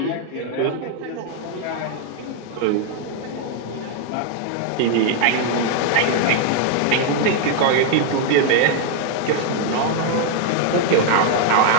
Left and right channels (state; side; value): different; both; correlation 0.00